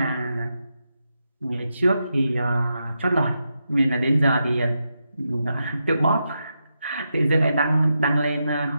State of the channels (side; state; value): both; inverted; correlation -0.86